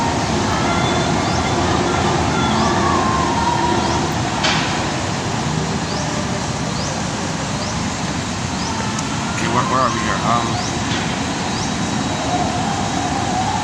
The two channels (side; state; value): both; identical; correlation 1.00